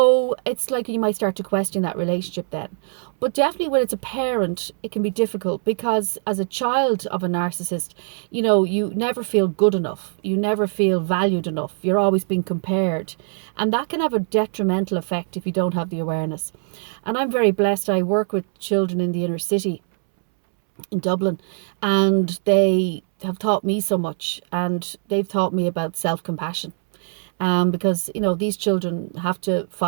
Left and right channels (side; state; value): left; silent; 64 dB below the other